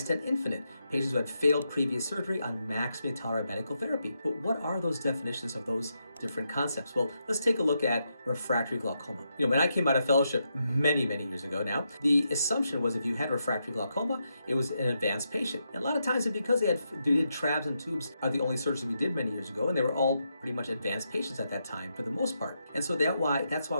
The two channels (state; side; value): inverted; both; correlation -0.83